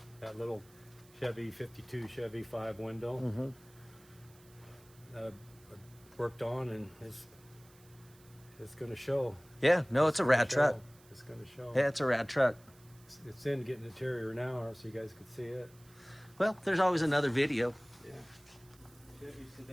that little Chevy 52 Chevy 5 window. I worked on, and it's going to show. Yeah, no, it's a rad truck. It's going to show. Yeah, it's a rad truck. It's in getting interior now, so you guys can see it. Well, there's always another video. Yeah. Chevy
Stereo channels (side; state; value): right; noise; hiss, 26 dB below the sound